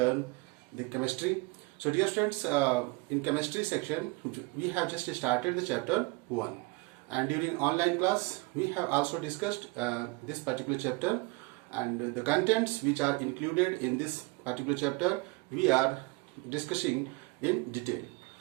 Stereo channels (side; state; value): left; quieter; 25.6 dB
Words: the chemistry. So dear students, in chemistry section, we have just started the chapter 1. And during online class, we have also discussed this particular chapter and the contents which are included in this particular chapter, we are discussing in detail.